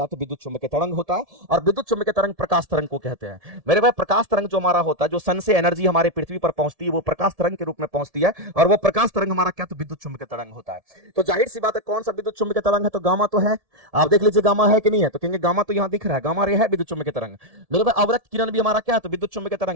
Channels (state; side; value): late; left; 1.7 ms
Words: है, तो विद्युत चुंबकीय तरंग होता है। और विद्युत चुंबकीय तरंग प्रकाश तरंग को कहते हैं मेरे भाई। प्रकाश तरंग जो हमारा होता है, जो सन से एनर्जी हमारे पृथ्वी पर पहुंचती है, वो प्रकाश तरंग के रूप में पहुंचती है, और वो प्रकाश तरंग हमारा क्या, तो विद्युत चुंबकीय तरंग होता है। तो जाहिर सी बात है कौन सा विद्युत चुंबकीय तरंग है, तो गामा तो है। आप देख लीजिए गामा है कि नहीं है, तो कहेंगे गामा तो यहां दिख रहा है, गामा रे है विद्युत चुंबकीय तरंग। मेरे भाई अवरक्त किरण भी हमारा क्या है, तो विद्युत चुंबकीय